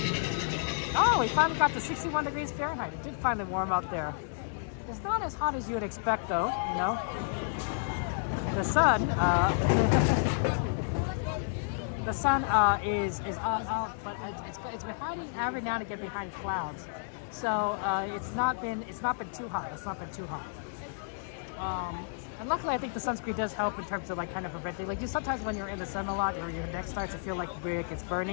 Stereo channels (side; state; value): right; silent; digital silence